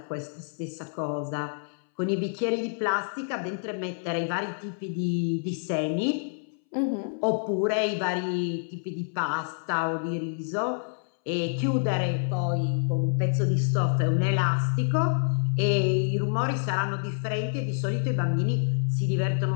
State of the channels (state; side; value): silent; right; 60 dB below the other